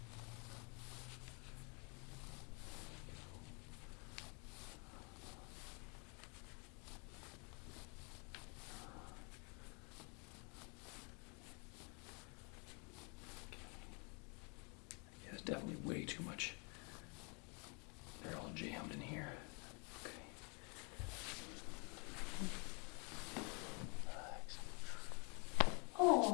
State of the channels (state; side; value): quieter; right; 34.1 dB